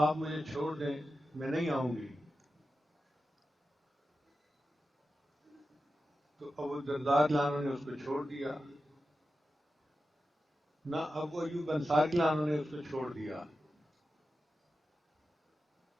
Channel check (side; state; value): both; normal; correlation 0.92